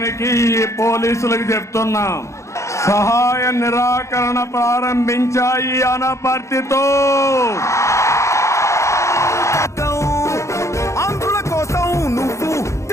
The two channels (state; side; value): late; right; 0.14 ms